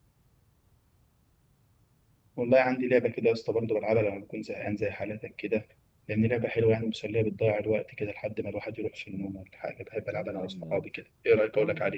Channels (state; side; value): identical; both; correlation 1.00